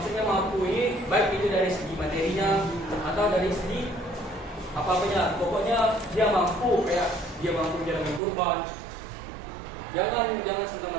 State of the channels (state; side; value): drops out; left; at 8.2 s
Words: mampu ini baik itu dari segi materinya atau dari segi apa-apanya. Pokoknya dia mampu kayak dia mampu menjalankan kurban. Jangan